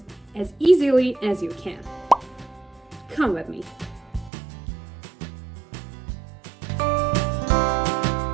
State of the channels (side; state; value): left; drops out; at 4.3 s